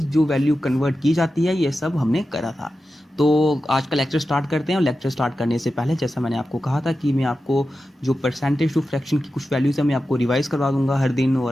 जो वैल्यू कन्वर्ट की जाती है ये सब हमने करा था। तो आज का लेक्चर स्टार्ट करते हैं। और लेक्चर स्टार्ट करने से पहले जैसा मैंने आपको कहा था कि मैं आपको जो परसेंटेज टू फ्रैक्शन की कुछ वैल्यूज़ है मैं आपको रिवाइज़ करवा दूंगा हर दिन।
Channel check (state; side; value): normal; both; correlation 0.92